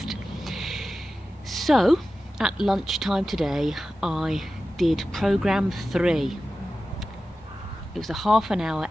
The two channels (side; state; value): both; normal; correlation 0.94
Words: So, at lunchtime today, I did program 3. It was a half-an-hour